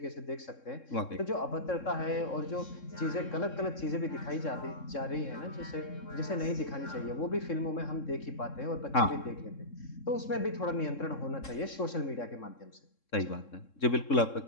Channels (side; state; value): right; late; 3.7 ms